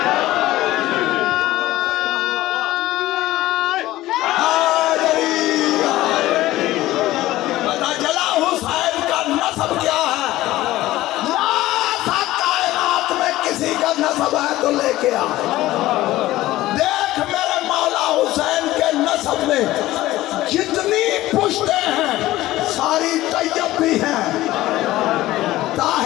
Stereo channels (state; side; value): quieter; right; 16.4 dB